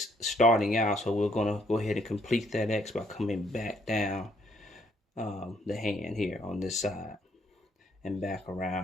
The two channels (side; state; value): both; normal; correlation 0.68